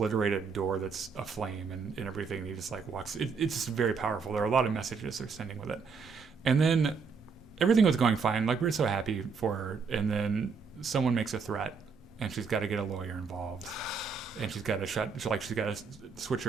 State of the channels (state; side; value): quieter; left; 5.4 dB